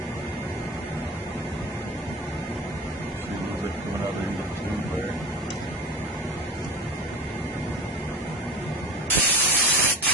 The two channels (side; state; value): both; normal; correlation 0.33